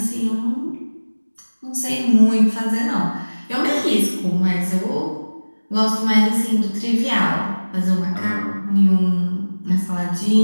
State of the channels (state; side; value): inverted; both; correlation -1.00